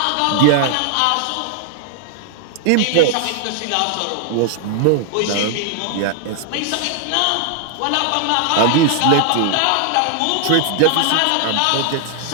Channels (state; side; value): different; both; correlation 0.00